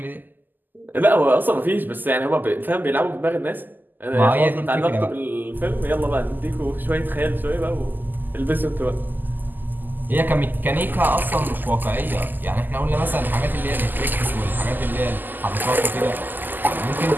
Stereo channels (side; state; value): left; late; 0.088 ms